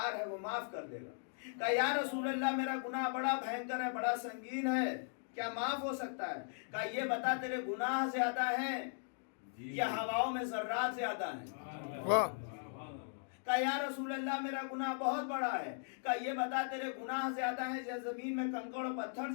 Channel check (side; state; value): right; silent; digital silence